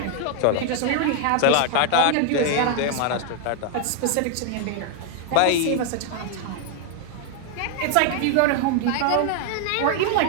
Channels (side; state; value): both; different; correlation 0.00